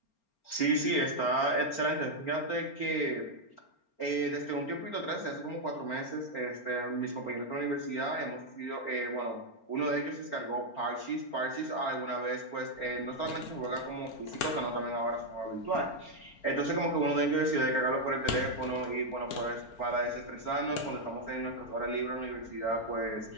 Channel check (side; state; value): right; late; 4.4 ms